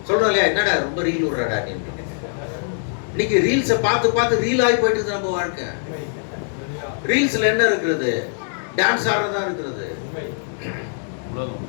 சொல்றோம் இல்லையா? என்னடா ரொம்ப ரீல் விடுறடா நீ. இன்னைக்கு ரீல்ஸை பார்த்து ரீல் ஆகி போயிட்டு இருக்கு நம்ம வாழ்க்கை. ரீல்ஸ்ல என்ன இருக்கிறது? டான்ஸ் ஆடுறதா இருக்கிறது,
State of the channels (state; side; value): silent; right; 64 dB below the other